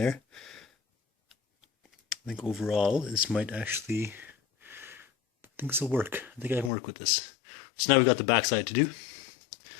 I think overall this might actually, I think this will work. I think I can work with this. So now we've got the backside to do.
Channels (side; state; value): right; drops out; at 6.7 s